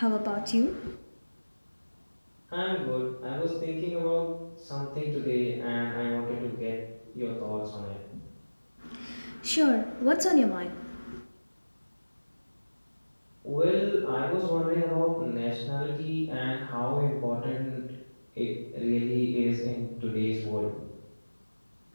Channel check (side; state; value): both; inverted; correlation -1.00